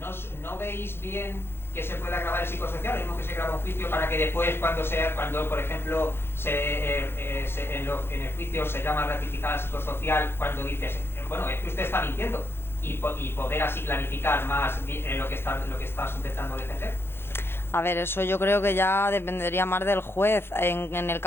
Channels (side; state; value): right; late; 0.11 ms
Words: ¿no veis bien que se pueda grabar el psicosocial? Lo mismo que se graba un juicio para que después, cuando por ejemplo, en el juicio se llama ratificar al psicosocial, cuando dices, bueno, es que usted está mintiendo, y poder así clarificar más lo que estás intentando defender. A ver, eso yo creo que ya dependería más del juez. En el